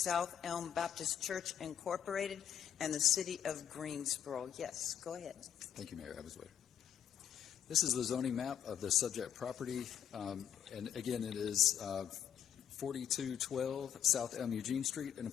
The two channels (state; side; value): quieter; right; 9.5 dB